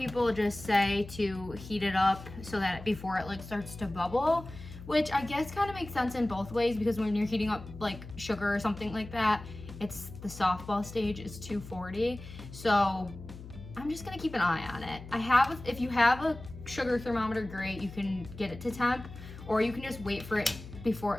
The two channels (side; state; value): left; noise; hum, 14 dB below the sound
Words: just say to heat it up so that before it like starts to bubble, which I guess kind of makes sense in both ways, because when you're heating up like sugar or something like that, it's the softball stage is 240. So I'm just gonna keep an eye on it. If you have a sugar thermometer, great, you can get it to temp, or you can just wait for it before